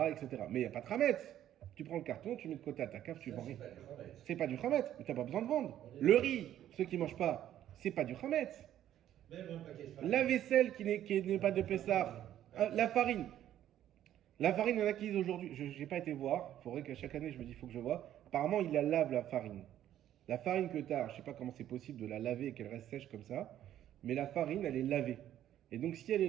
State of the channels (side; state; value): left; quieter; 11.7 dB